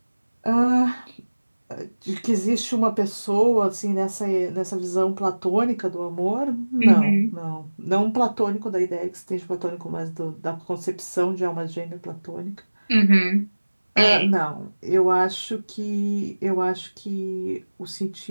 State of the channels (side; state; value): both; inverted; correlation -1.00